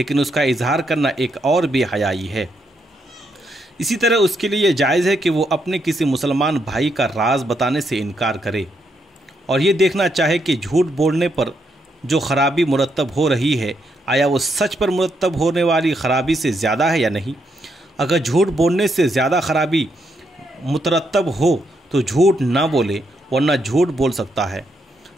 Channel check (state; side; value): normal; both; correlation 0.78